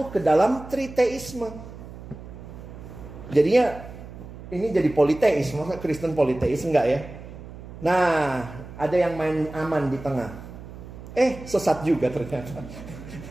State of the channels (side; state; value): right; noise; hum, 14 dB below the sound